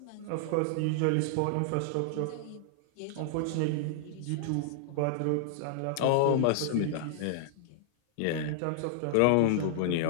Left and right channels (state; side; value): different; both; correlation -0.01